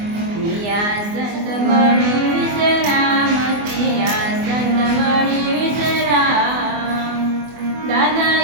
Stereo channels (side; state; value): left; late; 24 ms